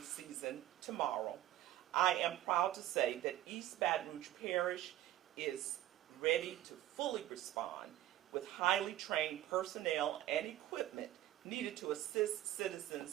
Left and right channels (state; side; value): quieter; left; 13.9 dB